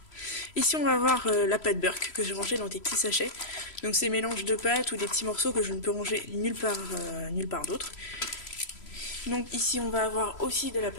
Ici on va avoir la pâte Burke que j'ai rangée dans des petits sachets. Donc c'est mélange de pâtes ou des petits morceaux que je ne peux ranger nulle part d'autre. Donc ici on va avoir aussi de la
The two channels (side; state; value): right; late; 3.0 ms